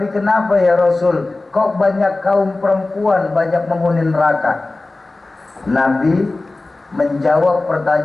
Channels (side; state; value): right; quieter; 3.2 dB